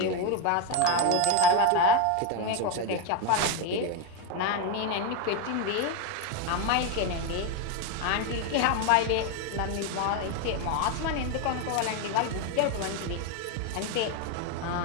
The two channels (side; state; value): both; different; correlation 0.02